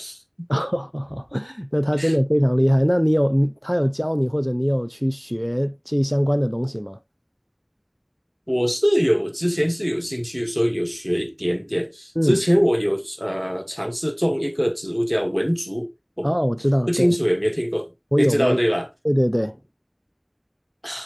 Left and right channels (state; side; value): identical; both; correlation 1.00